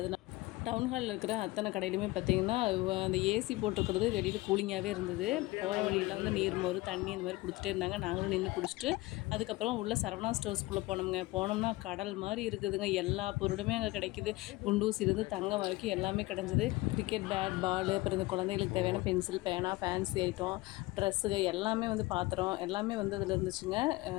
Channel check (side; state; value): right; quieter; 20.5 dB